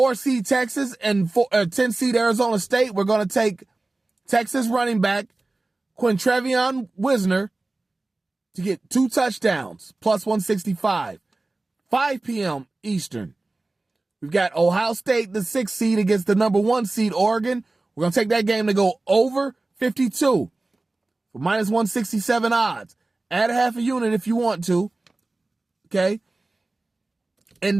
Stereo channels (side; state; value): left; quieter; 3.1 dB